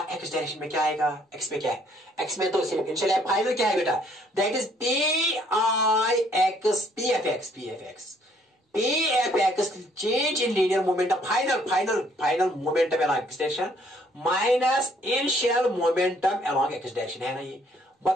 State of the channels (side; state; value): both; normal; correlation 0.64